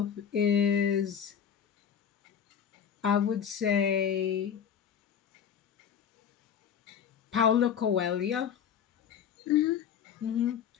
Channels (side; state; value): right; quieter; 8.3 dB